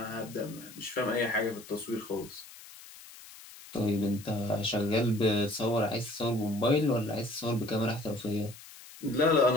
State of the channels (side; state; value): left; noise; hiss, 18 dB below the sound